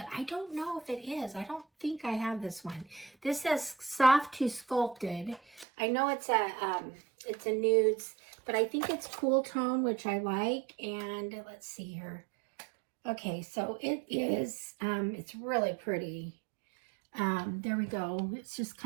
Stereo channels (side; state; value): left; drops out; at 5.7 s